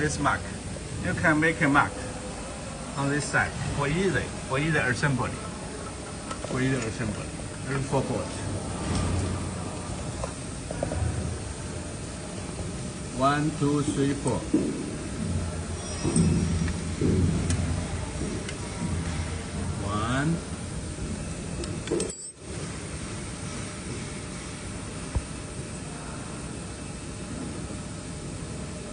mark. You can make a mark on this side for either assembly. There's 4 boards. 1, 2, 3, 4. One.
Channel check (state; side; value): identical; both; correlation 1.00